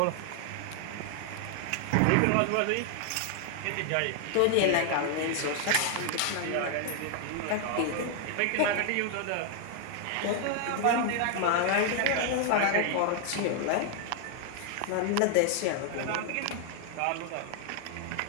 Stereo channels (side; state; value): both; different; correlation 0.00